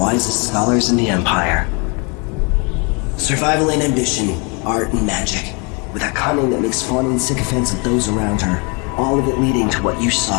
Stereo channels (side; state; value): right; quieter; 32.4 dB